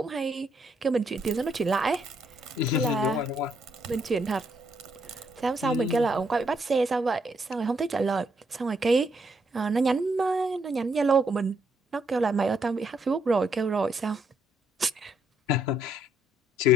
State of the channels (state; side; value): normal; both; correlation 0.74